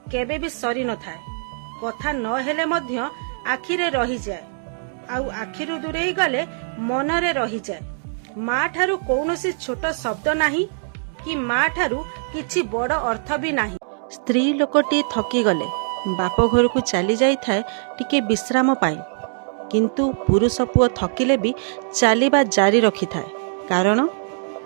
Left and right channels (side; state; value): left; silent; digital silence